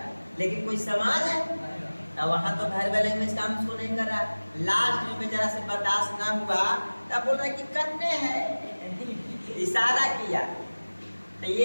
लेकिन कोई समाज है तो वहाँ तो वर्बल लैंग्वेज काम उसको नहीं कर रहा। लास्ट में बेचारा से बर्दाश्त ना हुआ तब बोल रहा है कि करने है, इशारा किया, तो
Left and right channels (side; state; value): both; inverted; correlation -1.00